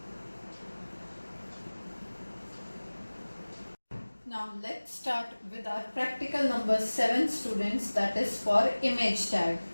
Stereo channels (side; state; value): both; inverted; correlation -1.00